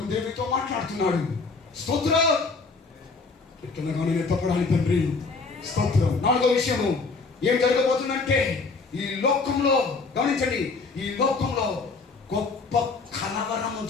దేవునితో మాట్లాడుతున్నాడు. స్తోత్రం. ఎట్లనగా నేను ఎత్తపడాలి తండ్రి. స్తోత్రం. నాలుగో విషయము ఏం జరగబోతుందంటే, ఈ లోకంలో గమనించండి, ఈ లోకంలో గొప్ప కలవరము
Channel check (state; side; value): quieter; right; 4.2 dB